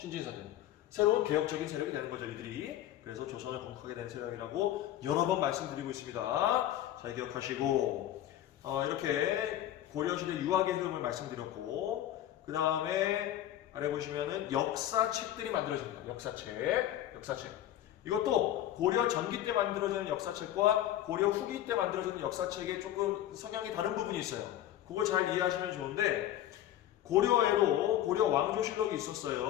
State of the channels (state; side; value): quieter; right; 12.6 dB